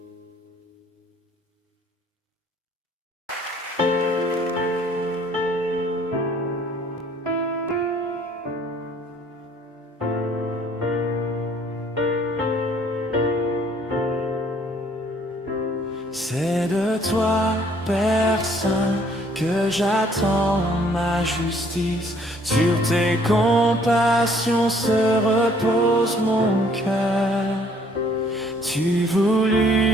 C'est de toi, Père Saint, que j'attends ma justice. Sur tes compassions se repose mon cœur. Tu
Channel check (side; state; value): both; normal; correlation 0.61